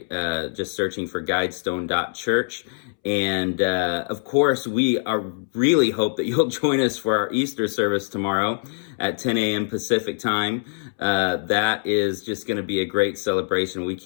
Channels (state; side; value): silent; right; 63 dB below the other